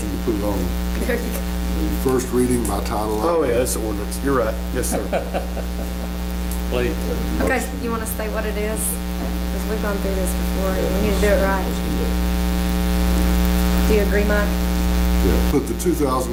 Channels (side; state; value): both; identical; correlation 1.00